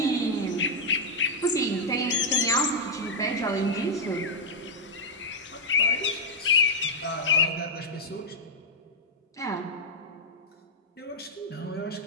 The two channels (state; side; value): normal; both; correlation -0.04